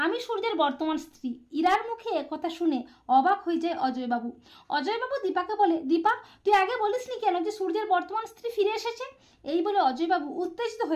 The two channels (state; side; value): identical; both; correlation 1.00